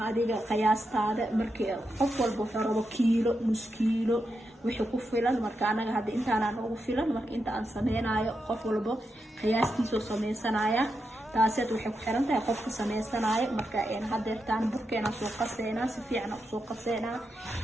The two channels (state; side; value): normal; both; correlation 0.86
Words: adiga qiyaastaada markii qof walba wuxuu rabo kiilo nus kiilo wixii ku filan marka anaga hadda intaan ugu filan marka inta aan sameynayo qof walba qiyaastiisa sameeysanaya taasad waxay ku xiran tahay qofka sameeysanaya marka hadeertaan burkeena soo qaseena si fiican u soo qaseena